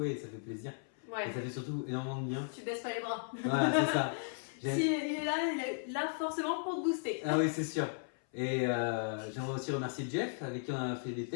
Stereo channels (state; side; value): silent; right; 54 dB below the other